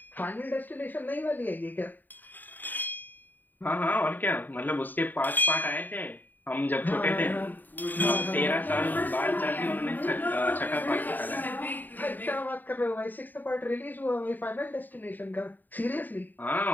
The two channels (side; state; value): right; late; 0.088 ms